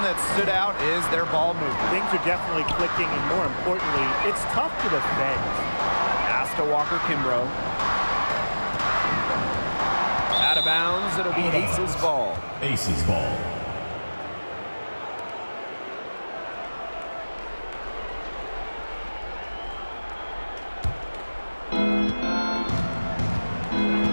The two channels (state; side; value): inverted; both; correlation -1.00